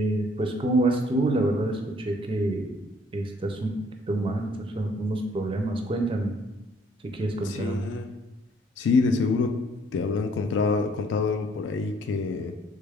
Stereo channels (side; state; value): both; normal; correlation 0.62